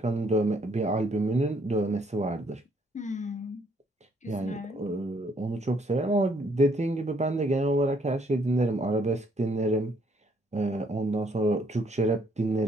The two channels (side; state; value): both; normal; correlation 0.68